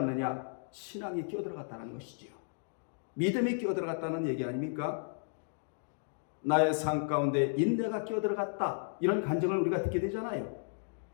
신앙이 끼어들어갔다는 것이지요. 믿음이 끼어들어갔다는 얘기 아닙니까? 나의 삶 가운데 인내가 끼어들어갔다, 이런 간증을 우리가 듣게 되잖아요.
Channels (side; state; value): right; silent; digital silence